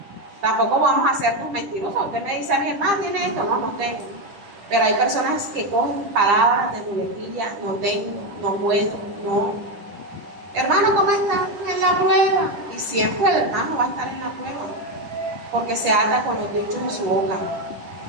Tampoco vamos a ser tus mentirosos. Usted me dice a mi hermano, ¿tiene esto? No tengo. Pero hay personas que cogen palabras de muletilla, no tengo, no puedo, no. Hermano, ¿cómo está? En la prueba. Y siempre el hermano va a estar en la prueba, porque se ata con los dichos de su boca.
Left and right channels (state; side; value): late; left; 9.9 ms